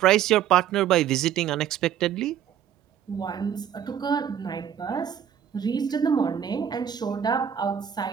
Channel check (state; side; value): quieter; left; 9.4 dB